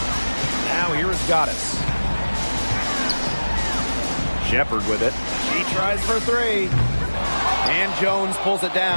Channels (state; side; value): inverted; both; correlation -1.00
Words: Now here is Goddess. Shepard with it. She tries for three. And Jones pulls it